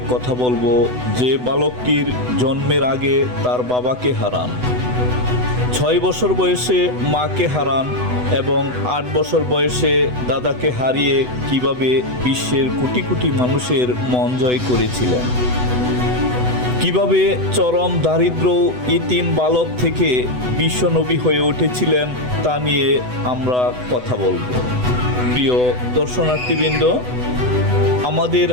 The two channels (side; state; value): left; late; 8.0 ms